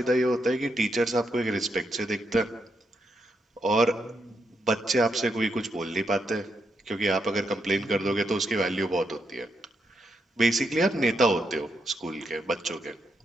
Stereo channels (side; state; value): both; normal; correlation 0.80